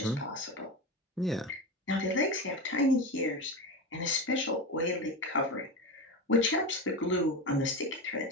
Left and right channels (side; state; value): both; normal; correlation 0.20